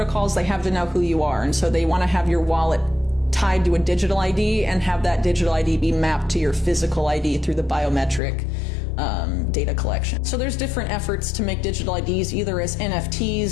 They have to know who you are. And so they want to have your wallet tied to a digital ID and have that digital ID be mapped to your physical ID through the biometric data collection. So there's different efforts to make digital IDs either as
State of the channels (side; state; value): right; drops out; at 8.2 s